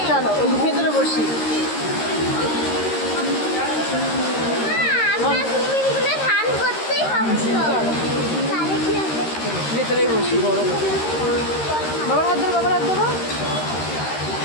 চলো ওই ভেতরে বসি ভেতরেই বসি গরম বাবার হাত ধরো বাবার হাত ধরো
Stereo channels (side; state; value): right; late; 13 ms